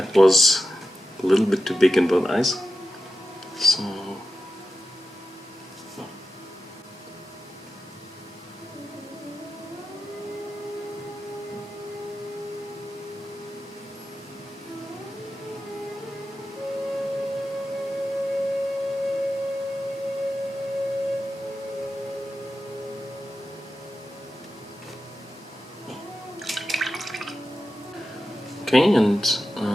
was a little bit too big in both eyes. So okay, and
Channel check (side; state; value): both; normal; correlation 0.91